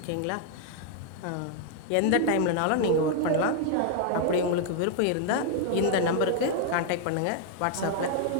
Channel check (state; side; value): different; both; correlation 0.00